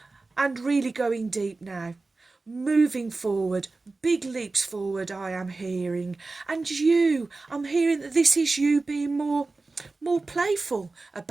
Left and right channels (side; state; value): left; quieter; 3.6 dB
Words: and really going deep now. Moving forward, big leaps forward I am hearing. And you, I'm hearing that this is you being more playful